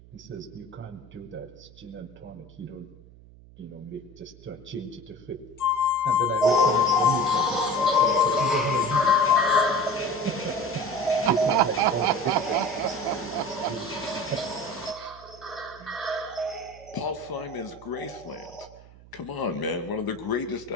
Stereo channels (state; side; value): noise; right; hum, 22 dB below the sound